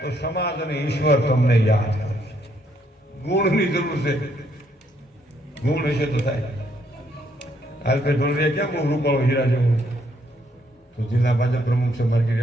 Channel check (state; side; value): normal; both; correlation 0.71